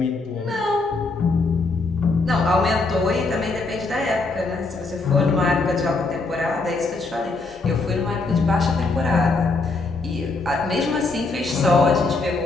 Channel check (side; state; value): right; quieter; 3.6 dB